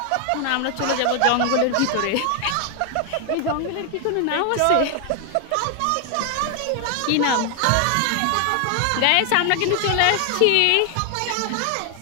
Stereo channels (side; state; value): both; different; correlation 0.00